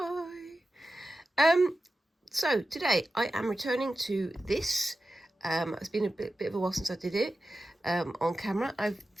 So today I am returning to this. It's been a bit of a while since I did it on camera. I've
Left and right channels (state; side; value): normal; both; correlation 0.93